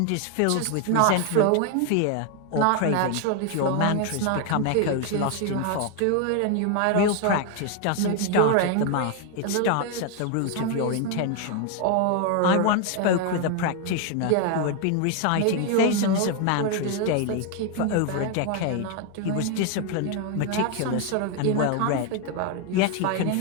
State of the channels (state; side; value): different; both; correlation 0.01